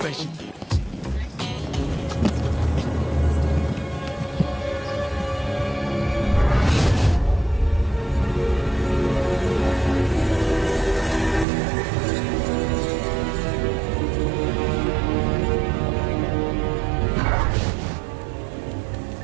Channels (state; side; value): drops out; left; at 11.5 s